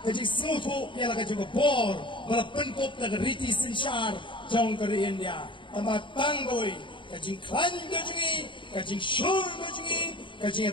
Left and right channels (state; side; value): late; right; 0.24 ms